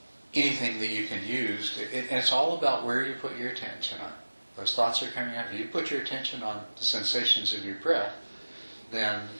anything that you can use, and it's all about where you put your attention on. Those thoughts are coming out. If you put your attention on the sensations of your breath, then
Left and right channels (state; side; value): inverted; both; correlation -1.00